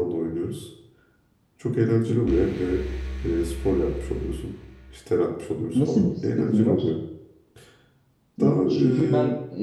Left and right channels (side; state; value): both; identical; correlation 1.00